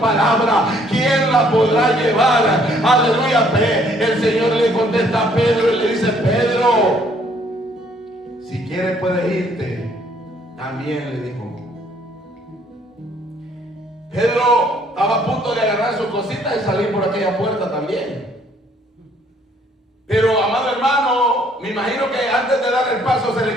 ¿quién la podrá llevar? Aleluya, el Señor le contesta a Pedro y le dice, Pedro, si quieres puedes irte. También le dijo. Pedro estaba a punto de agarrar sus cositas y salir por aquella puerta también. Pero, amado hermano, me imagino que antes de dar el paso se le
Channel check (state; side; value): normal; both; correlation 0.64